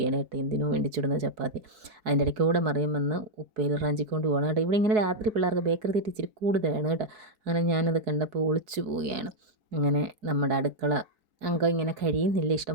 കേട്ടോ. എന്തിനോ വേണ്ടി ചുടുന്ന ചപ്പാത്തി. അതിൻ്റെ ഇടയ്ക്കൂടെ മറിയുമെന്ന് ഉപ്പേൽ റാഞ്ചിക്കൊണ്ട് പോകണം കേട്ടോ. ഇവിടെ ഇങ്ങനെ രാത്രി പിള്ളേർക്ക് ബേക്കറി തീറ്റി ഇച്ചിരി കൂടുതലാണ് കേട്ടോ. അങ്ങനെ ഞാനത് കണ്ടപ്പോൾ ഒളിച്ചു പോവുകയാണ്. അങ്ങനെ നമ്മുടെ അടുക്കള അംഗം ഇങ്ങനെ കഴിയുന്നില്ല.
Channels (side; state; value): left; late; 4.7 ms